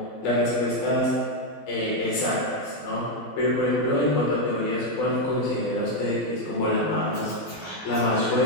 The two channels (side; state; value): right; late; 12 ms